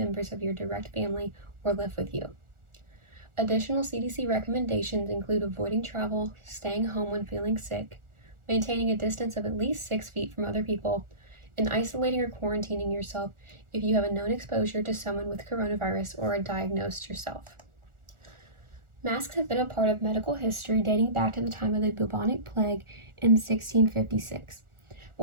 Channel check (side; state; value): left; late; 1.4 ms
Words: of your direct family or live with you. Additional CDC recommendations include avoiding travel, staying home when feeling sick, maintaining a distance of at least 6 feet from other people, and isolating or quarantining yourself if you have a known exposure to someone with coronavirus or are diagnosed yourself. Masks have been a part of medical history dating back to the time of the bubonic plague in 1656.